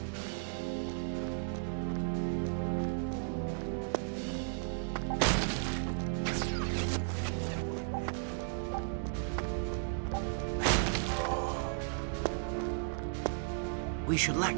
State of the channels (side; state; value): left; silent; digital silence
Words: We should let